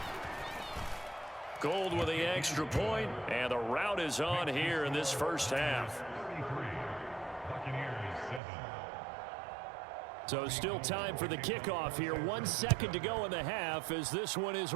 Gold with the extra point, and the rout is on here in this first half. So still time for the kickoff here. 1 second to go in the half as this one is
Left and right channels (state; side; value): drops out; left; at 8.4 s